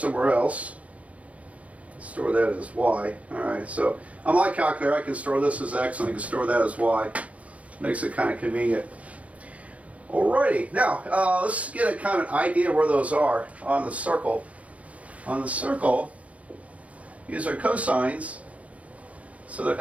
else. Store that as y. All right, so on my calculator I can store this as x and I can store that as y. Makes it kind of convenient. Alrighty, now let's get a kind of an idea where those are on the circle. On the circle, these are cosines, so they're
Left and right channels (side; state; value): left; late; 0.066 ms